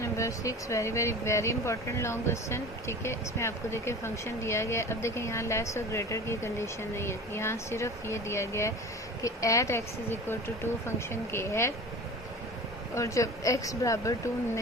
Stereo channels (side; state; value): both; normal; correlation 0.37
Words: number 6, very important long question. ठीक है, इसमें आपको देखिए फंक्शन दिया गया है। अब देखिए यहाँ लेस और ग्रेटर की कंडीशन नहीं है, यहाँ सिर्फ ये दिया गया है कि at x is equal to 2 function के है, और जब x बराबर 2